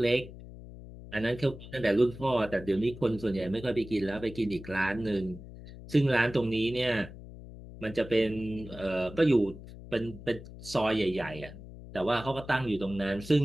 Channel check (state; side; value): noise; left; hum, 15 dB below the sound